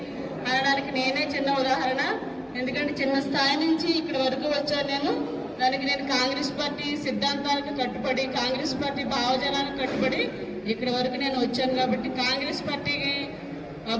అనడానికి నేనే చిన్న ఉదాహరణ. ఎందుకంటే చిన్న స్థాయి నుంచి ఇక్కడి వరకు వచ్చాను నేను. దానికి నేను కాంగ్రెస్ పార్టీ సిద్ధాంతాలకు కట్టుబడి కాంగ్రెస్ పార్టీ భావజనాలకు కట్టుబడి ఇక్కడి వరకు నేను వచ్చాను. కాబట్టి కాంగ్రెస్ పార్టీకి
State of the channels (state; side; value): identical; both; correlation 1.00